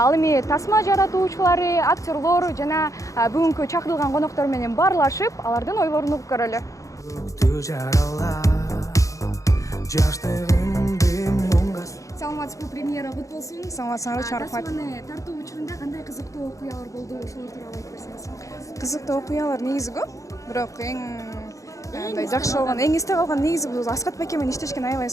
эми тасма жаратуучулары, актерлор жана бүгүнкү чакырылган коноктор менен баарлашып, алардын ойлорун угуп көрөлү. Саламатсызбы, премьера кут болсун. Саламатсызбы, чоң рахмат. Тасманы тартуу учурунда кандай кызыктуу окуялар болду, ошолор тууралуу айтып берсеңиз. Кызыктуу окуялар негизи көп, бирок эң жакшы болгон, эң эсте калган негизи бул Аскат байке менен иштешкен аябай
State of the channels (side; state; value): right; late; 0.16 ms